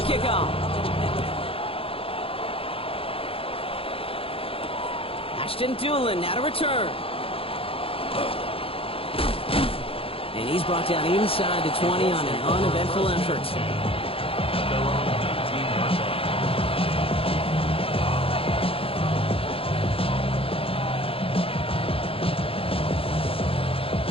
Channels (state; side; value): late; right; 0.27 ms